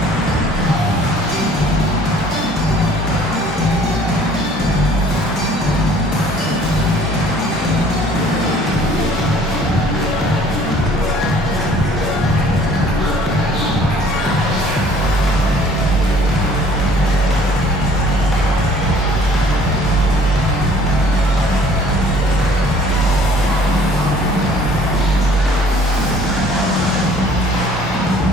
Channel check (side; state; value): both; normal; correlation 0.55